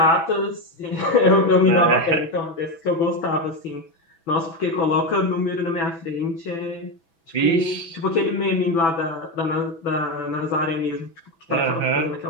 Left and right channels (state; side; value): late; right; 6.0 ms